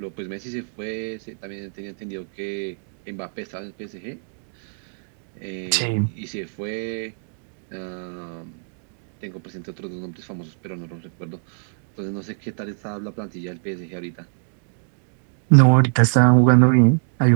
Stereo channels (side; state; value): left; silent; digital silence